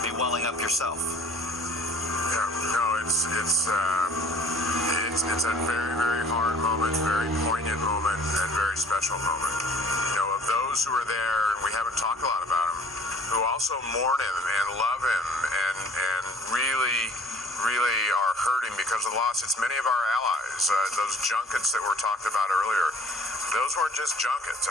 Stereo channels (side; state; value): both; normal; correlation 0.52